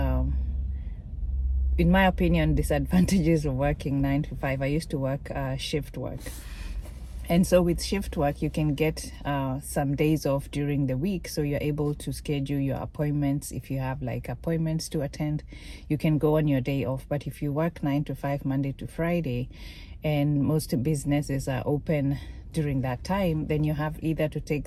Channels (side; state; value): both; identical; correlation 1.00